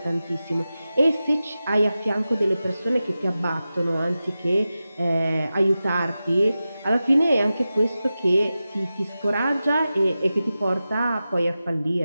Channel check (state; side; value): inverted; both; correlation -0.94